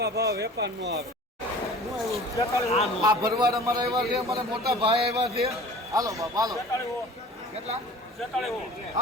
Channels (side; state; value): both; normal; correlation 0.44